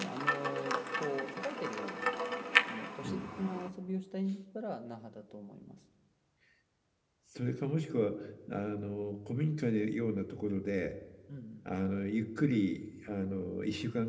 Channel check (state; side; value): identical; both; correlation 1.00